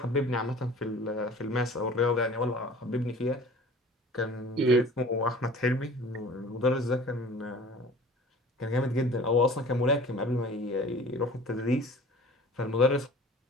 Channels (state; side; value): normal; both; correlation 0.44